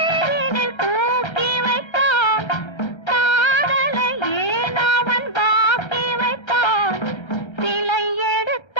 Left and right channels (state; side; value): late; right; 1.3 ms